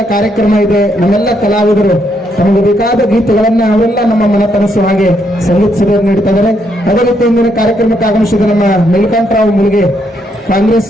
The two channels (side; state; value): both; normal; correlation 0.75